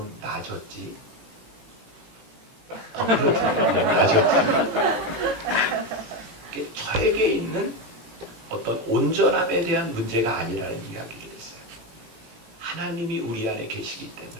나아졌지? 그렇죠. 네, 나아졌지. 저에게 있는 어떤 온전함에 대한 문제가 아니라는 이야기를 했어요. 하나님이 우리 안에 계시기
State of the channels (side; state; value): left; late; 18 ms